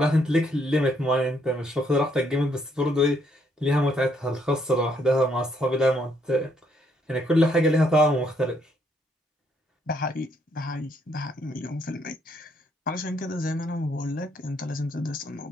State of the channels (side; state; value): both; normal; correlation 0.71